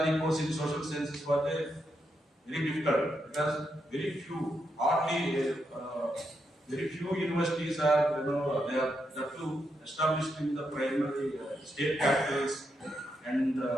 course in social sciences was very difficult, because very few universities are, they are established in the primary state capitals and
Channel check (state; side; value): normal; both; correlation 0.82